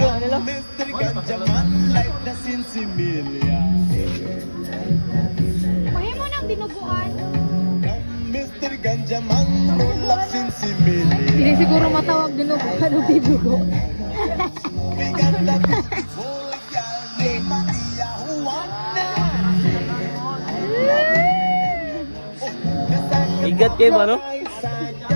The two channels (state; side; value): inverted; both; correlation -1.00